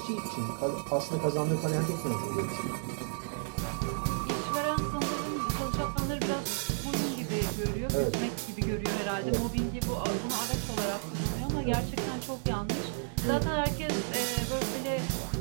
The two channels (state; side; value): silent; left; digital silence